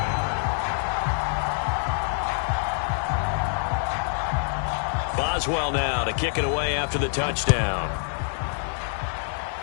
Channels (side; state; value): right; silent; digital silence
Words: 11. Boswell now to kick it away after the touchdown.